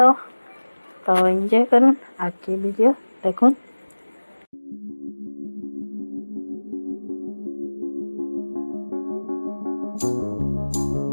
एंजॉय करूँ आगे वीडियो देखुन।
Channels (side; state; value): both; inverted; correlation -1.00